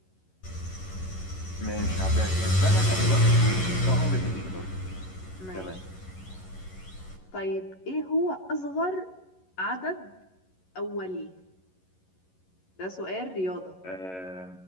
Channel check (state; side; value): late; right; 11 ms